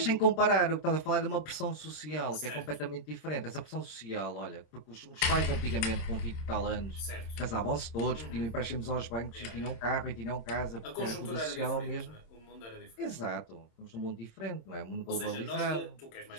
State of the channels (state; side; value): late; right; 26 ms